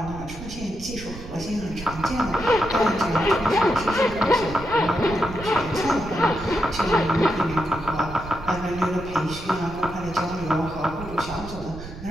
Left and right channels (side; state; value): right; noise; rumble, 13 dB below the sound